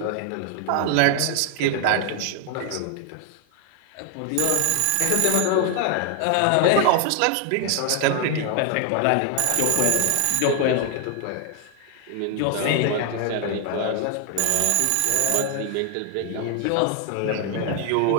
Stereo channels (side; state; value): both; different; correlation 0.00